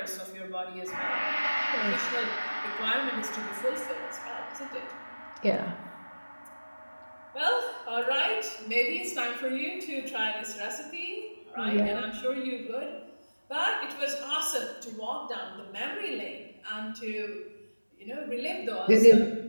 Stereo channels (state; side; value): inverted; both; correlation -1.00